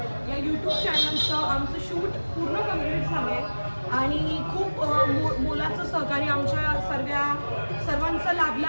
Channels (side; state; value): both; inverted; correlation -1.00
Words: या यूट्यूब चॅनलचं आमचं शूट पूर्ण कम्प्लीट झालं आहे आणि खूप मोलाचं सहकार्य आमच्या सर्वांचं लाभलं